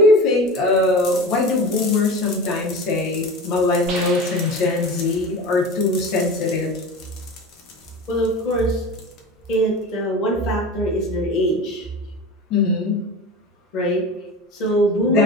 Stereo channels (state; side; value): normal; both; correlation 0.31